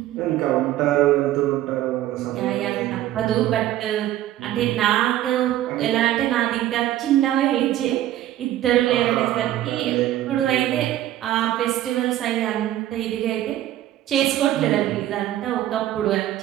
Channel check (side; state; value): left; quieter; 13.5 dB